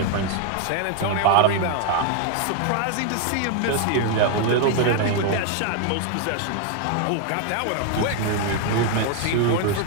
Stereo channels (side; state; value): both; different; correlation 0.00